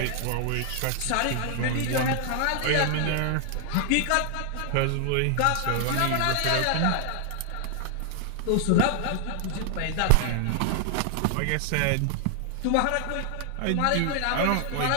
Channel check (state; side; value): different; both; correlation 0.00